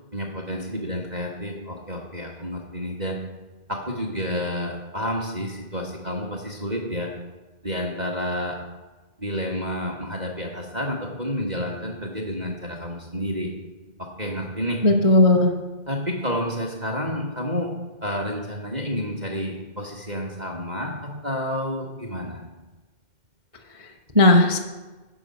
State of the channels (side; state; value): left; late; 2.0 ms